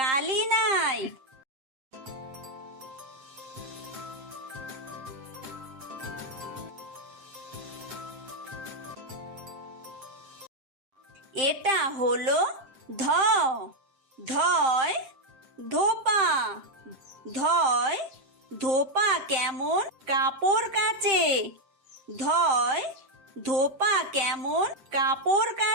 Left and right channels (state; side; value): late; left; 7.6 ms